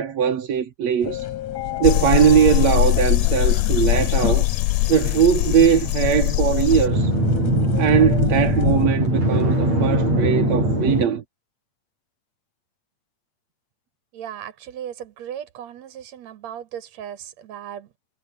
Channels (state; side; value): late; left; 8.7 ms